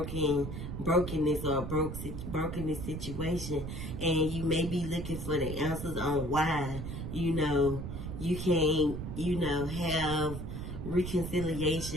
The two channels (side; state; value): right; noise; rumble, 6 dB below the sound